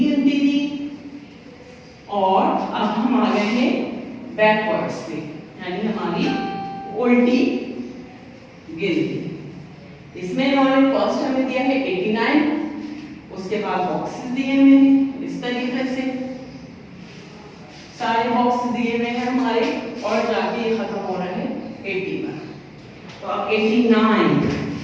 थी और अब हम आ गए हैं बैकवर्ड्स पे यानी हमारी उल्टी गिनती। इसमें इन्होंने फर्स्ट हमें दिया है 89, उसके बाद बॉक्सेस दिए हुए हैं इस तरीके से, सारे बॉक्स दिए हुए हैं हमारे और जाके ये खत्म हो रहा है 80 पर। तो अब 89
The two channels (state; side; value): identical; both; correlation 1.00